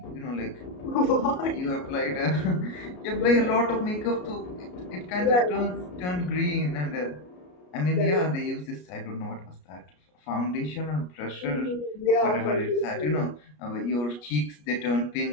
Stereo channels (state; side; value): late; right; 33 ms